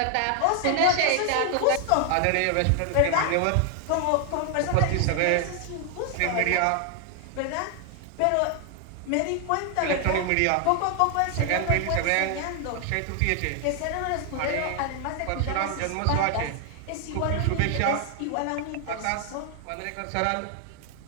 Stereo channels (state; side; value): different; both; correlation 0.00